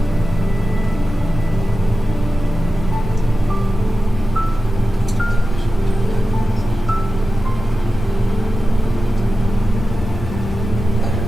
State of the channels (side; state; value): both; normal; correlation 0.93